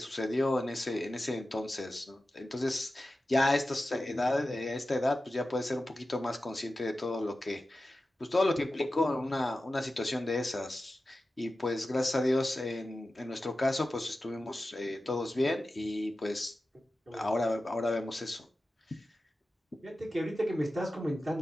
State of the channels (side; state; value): both; normal; correlation 0.94